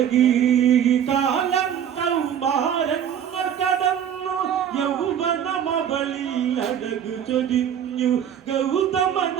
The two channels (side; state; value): left; quieter; 9.1 dB